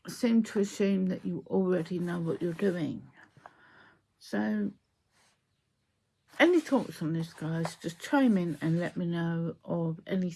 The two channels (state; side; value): identical; both; correlation 1.00